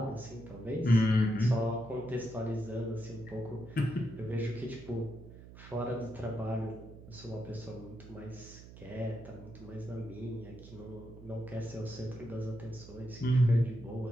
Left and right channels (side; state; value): right; noise; hum, 16 dB below the sound